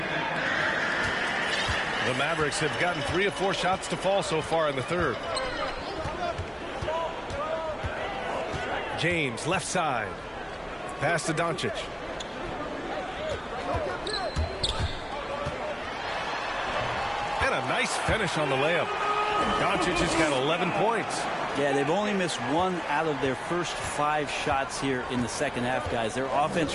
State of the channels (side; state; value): both; identical; correlation 1.00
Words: the Mavericks have gotten 3 of 4 shots to fall so far in the third. James, left side. Pass to Doncic. And a nice finish on the layup. Doncic has got 11 points. Yeah, they've only missed 1 out of their first 5 shots here in the second half, guys. Their